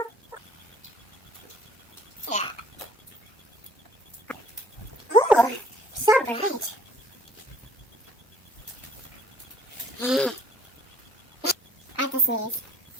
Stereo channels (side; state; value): both; normal; correlation 0.57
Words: Yeah. Ooh, so bright. I have to sneeze.